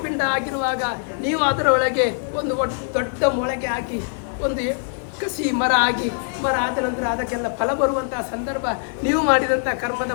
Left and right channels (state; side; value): silent; right; 64 dB below the other